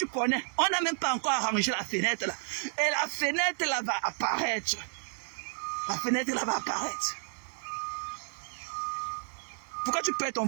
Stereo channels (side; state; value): left; silent; 57 dB below the other